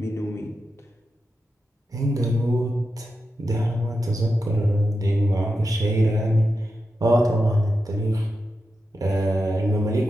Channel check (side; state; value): both; normal; correlation 0.89